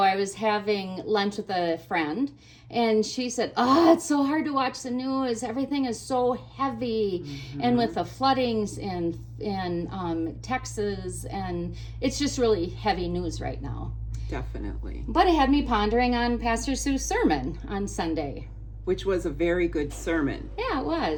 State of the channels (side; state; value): both; identical; correlation 1.00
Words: I was having lunch with a friend, and she said, "Oh, it's so hard to watch the news. Everything is so heavy, and with the floodings in Texas, and it's just really heavy news right now." Definitely. But it had me pondering on Pastor Sue's sermon on Sunday. Which was a very good sermon. Yeah, it